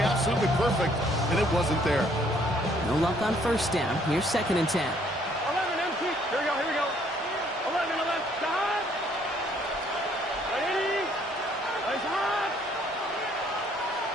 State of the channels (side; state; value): both; normal; correlation 0.64